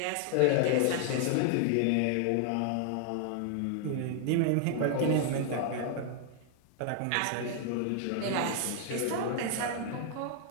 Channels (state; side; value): different; both; correlation 0.00